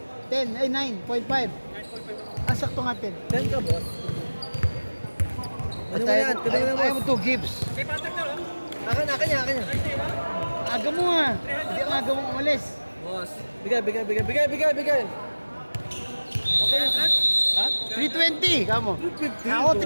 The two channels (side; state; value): both; inverted; correlation -1.00